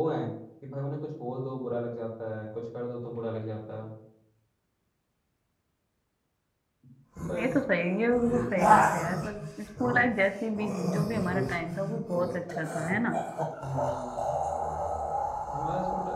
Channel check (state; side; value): identical; both; correlation 1.00